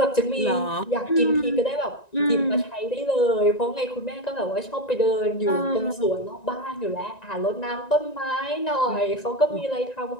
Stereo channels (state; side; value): late; right; 1.9 ms